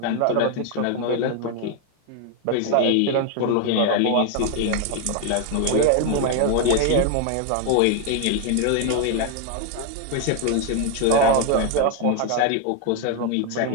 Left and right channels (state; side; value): different; both; correlation 0.00